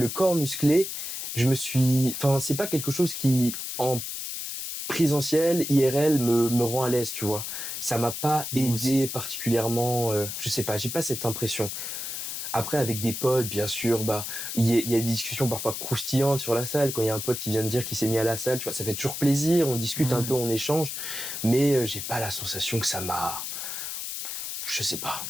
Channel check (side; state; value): left; noise; hiss, 5 dB below the sound